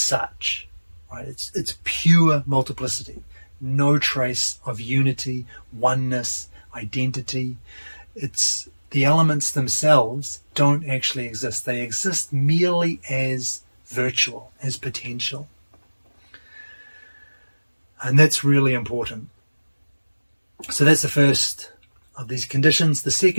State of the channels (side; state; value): both; inverted; correlation -1.00